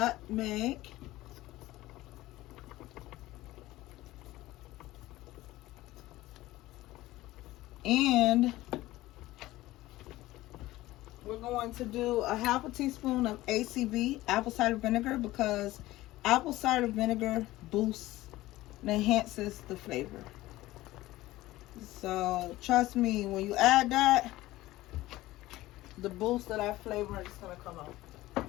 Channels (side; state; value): right; quieter; 17.2 dB